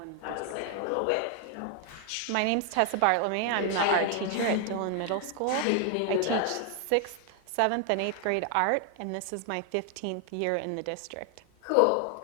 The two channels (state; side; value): different; both; correlation 0.00